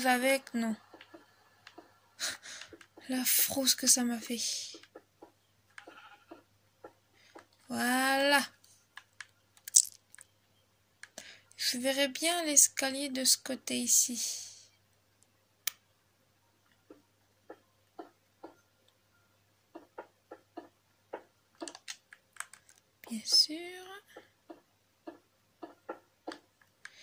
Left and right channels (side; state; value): both; identical; correlation 1.00